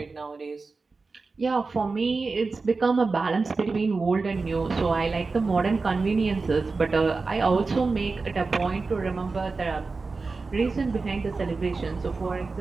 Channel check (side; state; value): left; quieter; 4.1 dB